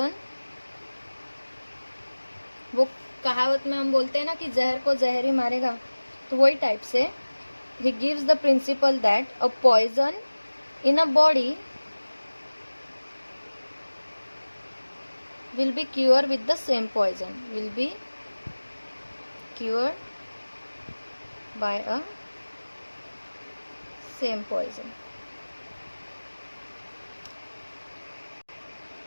वो कहावत में हम बोलते हैं ना कि जहर को जहर ही मारेगा, तो वही टाइप से he gives the principle that a poison in a body will be cured with the same poison, will be cured by a same poison.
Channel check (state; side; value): inverted; both; correlation -1.00